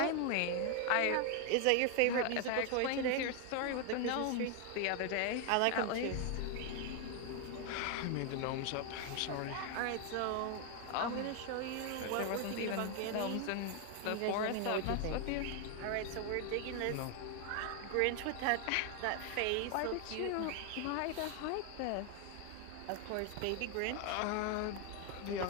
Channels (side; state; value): both; different; correlation 0.01